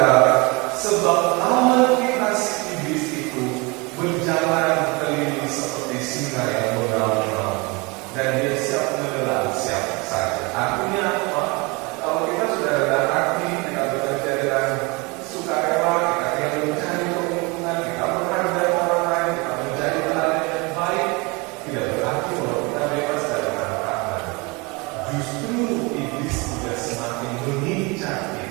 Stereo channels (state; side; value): quieter; left; 27.3 dB